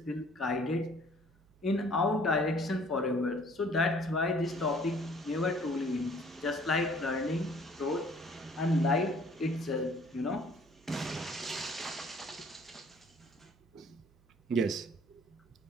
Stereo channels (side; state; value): right; noise; hum, 30 dB below the sound